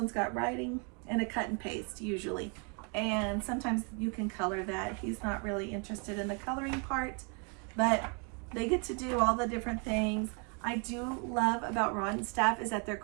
got writing and a cut and paste usually. And sometimes you can color that. He's not really interested in the coloring part, but they get to do all the different things. I do love about Rod and Staff is that they're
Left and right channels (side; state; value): left; quieter; 36.4 dB